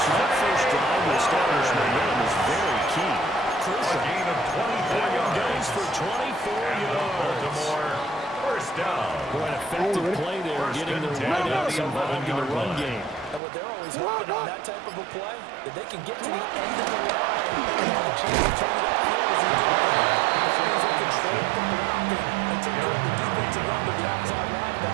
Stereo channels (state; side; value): drops out; left; at 13.4 s